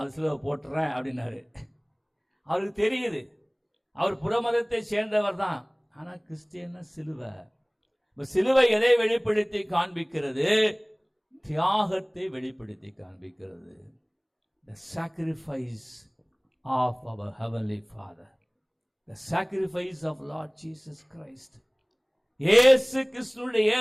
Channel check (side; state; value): both; identical; correlation 1.00